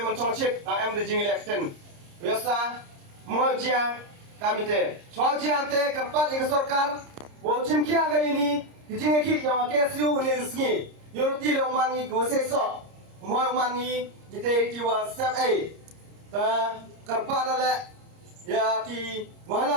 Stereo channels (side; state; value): left; late; 30 ms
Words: mencong chip, am the jing election. Biasa mau jia kami te. Soal jia te kerpat di sorkar, wo cim kia ke ini, jing ki yang KSU ni resmi. Yorti le mangi go sesok, mau mangi jite jiwa sep ta kerpat lale, ya ki